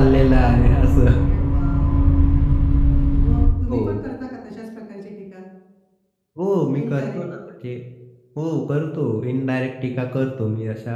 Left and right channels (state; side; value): identical; both; correlation 1.00